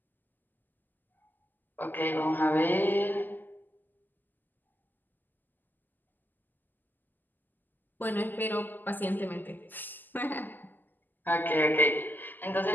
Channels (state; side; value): late; right; 0.088 ms